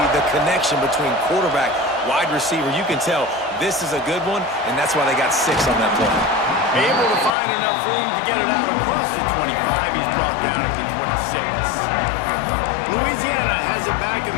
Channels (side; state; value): right; drops out; at 7.4 s